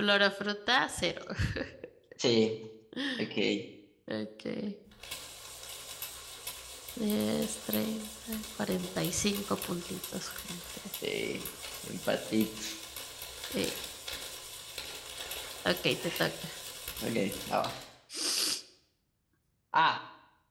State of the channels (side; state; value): both; identical; correlation 1.00